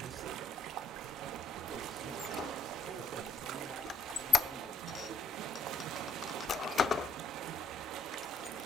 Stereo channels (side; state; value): both; normal; correlation 0.66